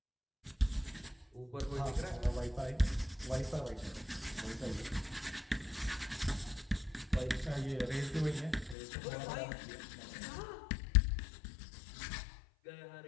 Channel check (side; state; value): right; drops out; at 8.8 s